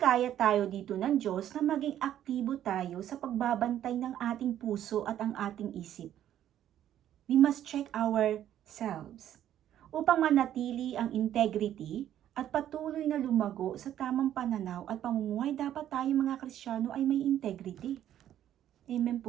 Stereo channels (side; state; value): left; quieter; 11.3 dB